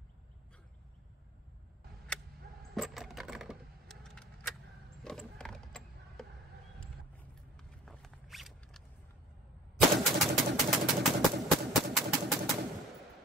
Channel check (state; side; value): normal; both; correlation 0.47